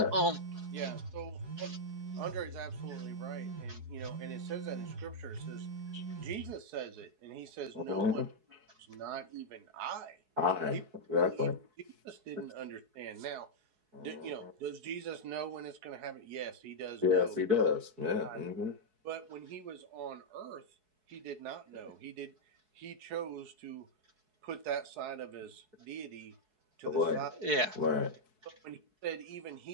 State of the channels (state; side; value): late; left; 4.7 ms